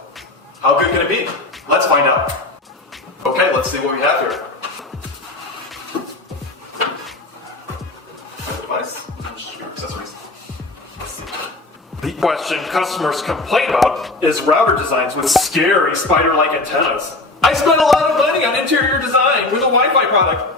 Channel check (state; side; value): quieter; right; 3.0 dB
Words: How good can it be? Let's find out. Okay, let's see what we have here. My device, accessories. The question customers complain about is router designs with scary spider-like antennas. I spent a lot of money on interior design with a Wi-Fi